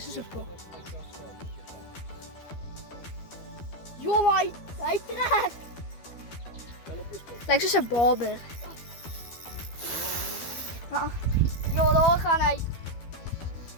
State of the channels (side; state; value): right; late; 12 ms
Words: is een kop. Joh, hij trekt. Lijkt zoals een baber. Joh, daar gaan hij.